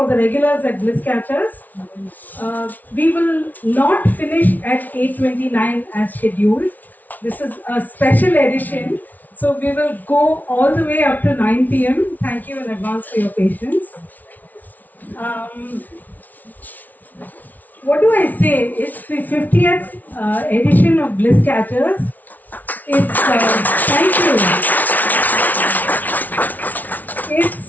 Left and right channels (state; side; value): late; right; 0.079 ms